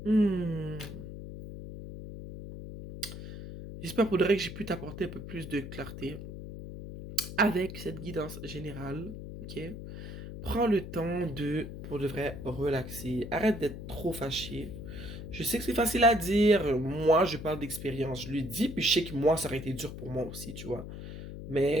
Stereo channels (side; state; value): left; noise; hum, 10 dB below the sound